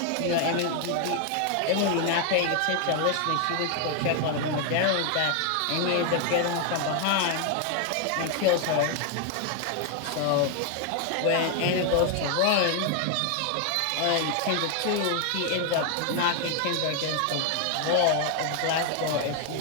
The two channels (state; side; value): different; both; correlation 0.01